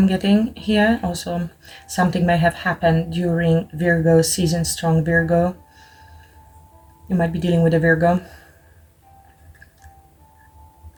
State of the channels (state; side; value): identical; both; correlation 1.00